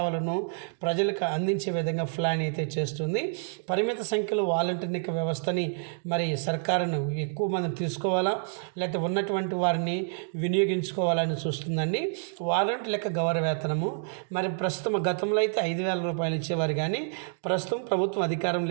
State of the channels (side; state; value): left; silent; digital silence